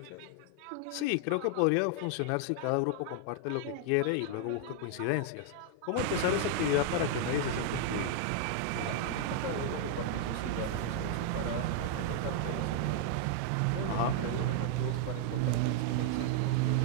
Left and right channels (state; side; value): different; both; correlation 0.00